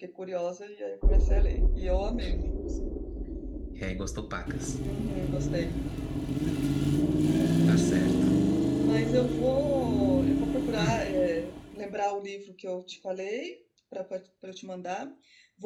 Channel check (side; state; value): both; identical; correlation 1.00